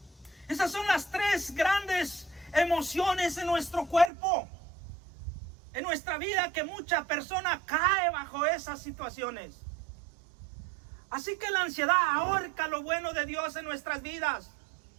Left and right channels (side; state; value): left; drops out; at 4.1 s